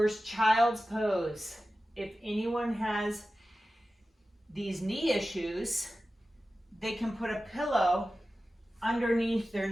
child's pose. If anyone has these knee issues, they can put a pillow underneath their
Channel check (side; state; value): both; normal; correlation 0.95